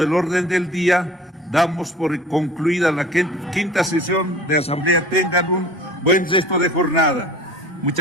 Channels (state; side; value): normal; both; correlation 0.44